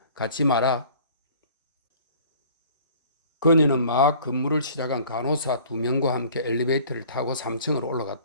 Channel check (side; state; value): both; inverted; correlation -0.50